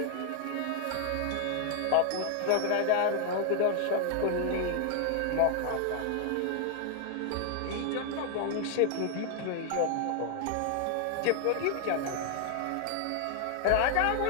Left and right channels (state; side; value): different; both; correlation 0.00